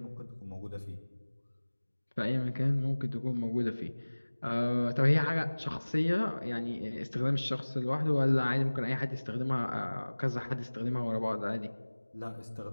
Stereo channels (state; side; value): inverted; both; correlation -1.00